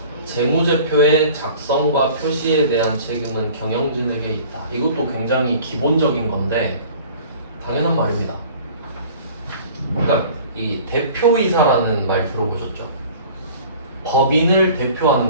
재무제표의 작성과 표시에 대한 책임은 경영진에게 있다. 이것도 굉장히 기본적인 건데 당연한 말입니다. 그러니까 이 대표이사라는 말 들어보셨죠? 법인을 대표하는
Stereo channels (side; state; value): both; inverted; correlation -0.46